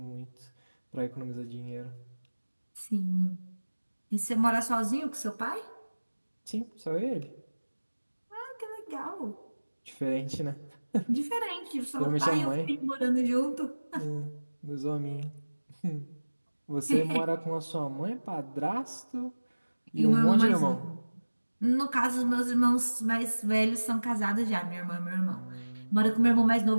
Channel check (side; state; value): both; inverted; correlation -1.00